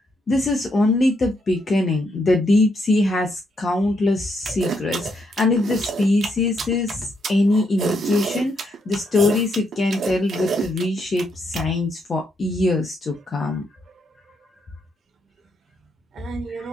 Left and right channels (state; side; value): normal; both; correlation 0.77